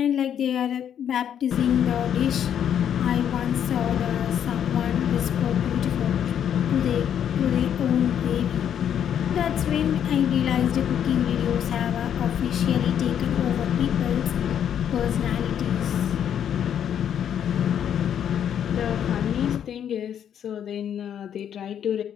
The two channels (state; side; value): quieter; right; 9.2 dB